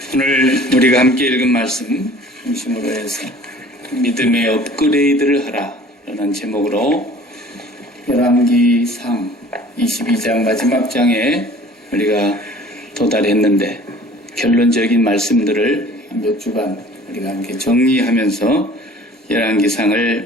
오늘 우리가 함께 읽은 말씀 중심으로 해서 믿음의 업그레이드를 하라라는 제목으로 열왕기상 22장 마지막 장에 우리가 도달했는데 결론적인 말씀들을 몇 주간 우리가 함께 정리하면서 열왕기상을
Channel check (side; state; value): both; normal; correlation 0.48